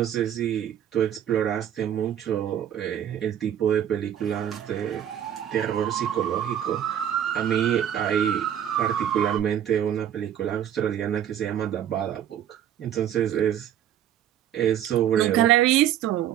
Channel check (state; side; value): quieter; left; 10.4 dB